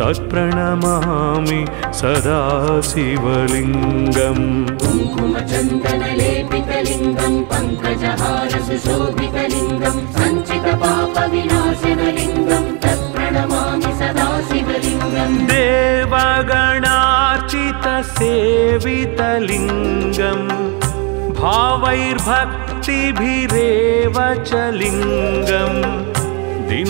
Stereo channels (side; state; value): left; quieter; 33.4 dB